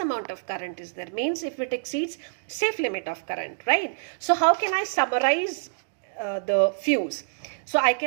of current is there, means if it exceeds safe limit of current, right? So how can I summarize the fuse? So I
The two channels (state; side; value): silent; left; digital silence